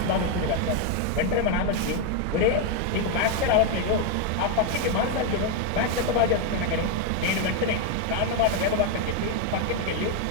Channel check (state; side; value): different; both; correlation 0.01